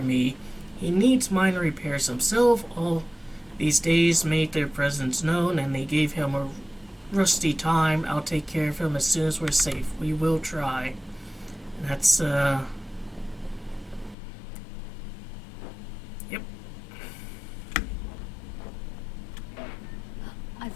me. He needs minor repairs himself. All these days made their presence known, and they gave him a rusty time. I'll take care of him as soon as we're safe. We will try. That's, Yep. I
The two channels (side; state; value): right; drops out; at 14.2 s